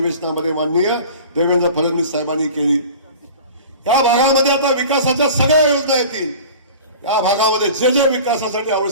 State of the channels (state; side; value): inverted; both; correlation -0.40